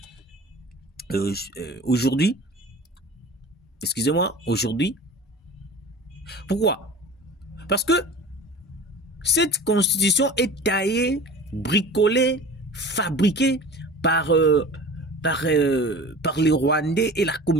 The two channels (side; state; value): both; normal; correlation 0.38